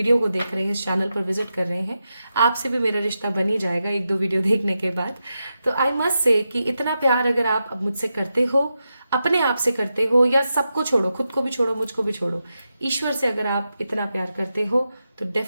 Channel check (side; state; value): both; inverted; correlation -0.88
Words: को देख रहे हैं, इस चैनल पर विजिट कर रहे हैं, आपसे भी मेरा रिश्ता बन ही जाएगा 1-2 वीडियो देखने के बाद। तो आई मस्ट से कि इतना प्यार अगर आप अब मुझसे करते हो, अपने आप से करते हो, या सबको छोड़ो, खुद को भी छोड़ो, मुझको भी छोड़ो, ईश्वर से अगर आप इतना प्यार करते हो तो